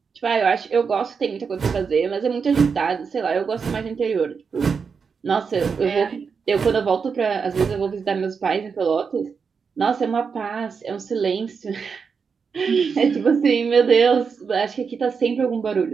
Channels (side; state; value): left; quieter; 5.7 dB